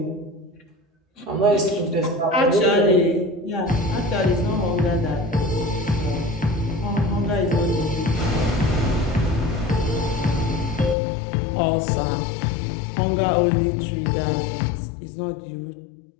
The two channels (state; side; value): drops out; right; at 11.0 s